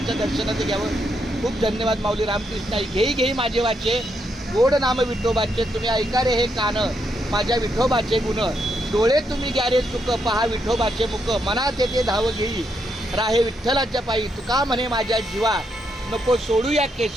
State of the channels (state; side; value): normal; both; correlation 0.79